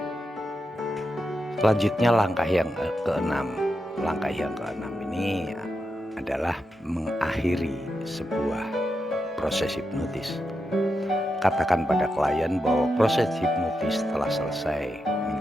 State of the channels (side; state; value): both; normal; correlation 0.86